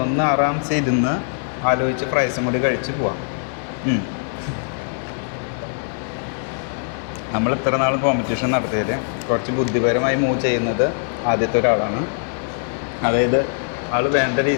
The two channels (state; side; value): silent; right; 65 dB below the other